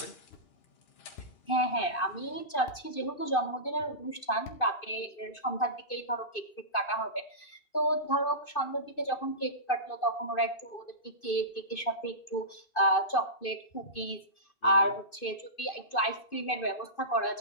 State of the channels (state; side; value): late; right; 2.5 ms